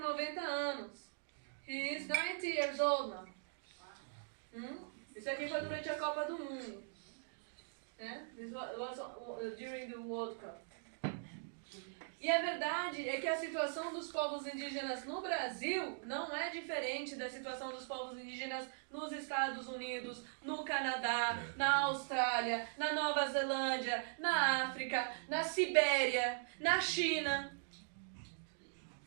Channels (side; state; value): left; silent; digital silence